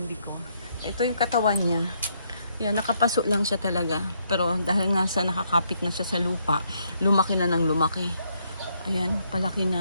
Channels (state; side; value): inverted; both; correlation -0.73